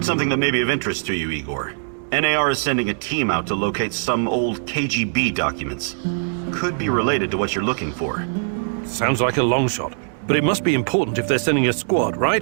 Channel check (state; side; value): silent; left; 65 dB below the other